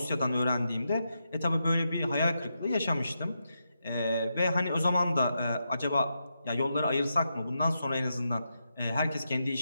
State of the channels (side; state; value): both; inverted; correlation -0.85